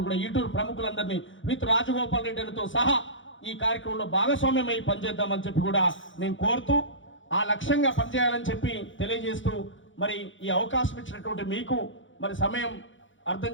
కూడా ఈటూరు ప్రముఖులందరినీ విత్ రాజగోపాల్ రెడ్డితో సహా ఈ కార్యక్రమంలో భాగస్వామ్యమై పనిచేద్దామని చెప్పి కూడా నేను కోరుతూ ఆ లక్ష్యంగా పనిచేయాలని చెప్పి తెలియజేస్తూ మరి ఈ అవకాశం ఇచ్చినటువంటి మీకు మరి సమయం అర్థం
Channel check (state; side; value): late; right; 0.56 ms